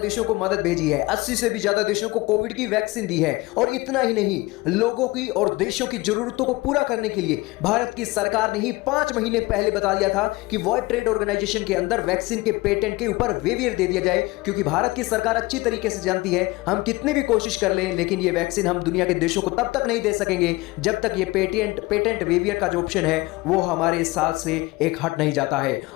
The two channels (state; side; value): quieter; right; 21.5 dB